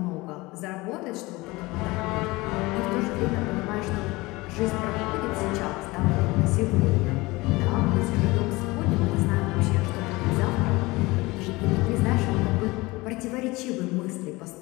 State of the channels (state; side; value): quieter; right; 21.9 dB